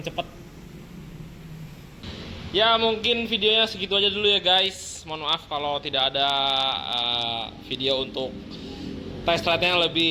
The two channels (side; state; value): both; identical; correlation 1.00